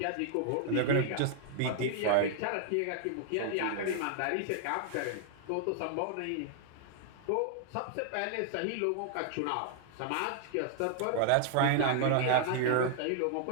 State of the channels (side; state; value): both; different; correlation 0.00